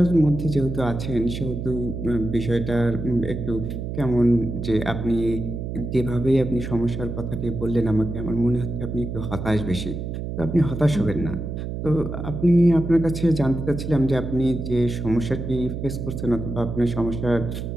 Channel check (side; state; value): right; noise; hum, 5 dB below the sound